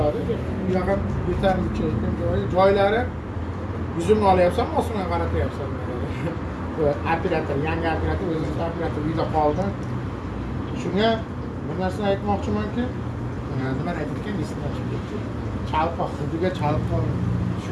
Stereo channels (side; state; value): both; identical; correlation 1.00